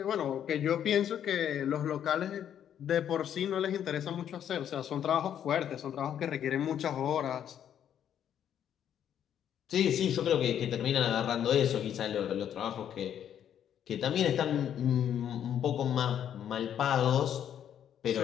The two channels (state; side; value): quieter; right; 9.7 dB